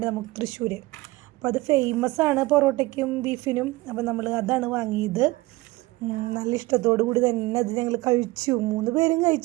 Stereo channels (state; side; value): quieter; left; 20.3 dB